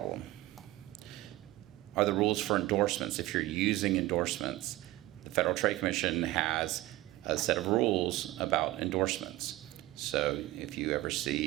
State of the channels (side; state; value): left; quieter; 17.3 dB